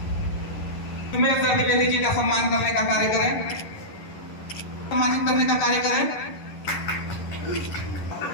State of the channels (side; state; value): right; late; 11 ms